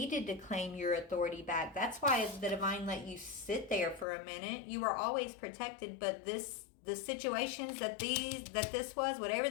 to claim your authority back. That's why the divine let you sit there for a minute. You were always protected, but the situations that this was, whatever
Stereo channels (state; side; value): drops out; right; at 4.0 s